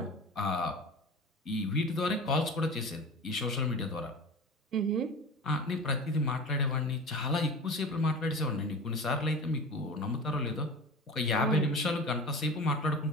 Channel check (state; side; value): normal; both; correlation 0.34